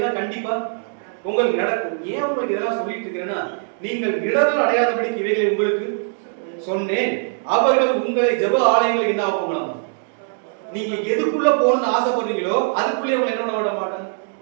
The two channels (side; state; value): left; silent; 65 dB below the other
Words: கண்டிப்பா உங்களுக்கு நடக்கும். ஏன் உங்களுக்கு இதெல்லாம் சொல்லிட்டு இருக்கிறேன்னா, நீங்கள் இடர்கள் அடையாதபடிக்கு இவைகளை உங்களுக்கு சொன்னேன். அவர்கள் உங்களை ஜெப ஆலயங்களுக்கு என்ன ஆகுங்களாம்? நீங்க எதுக்குள்ள போகணும்னு ஆசைப்படுறீங்களோ அதுக்குள்ளே உங்களை என்ன விட மாட்டாங்க.